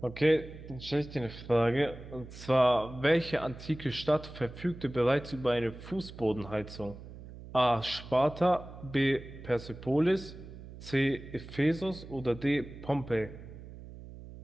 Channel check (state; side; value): noise; right; hum, 15 dB below the sound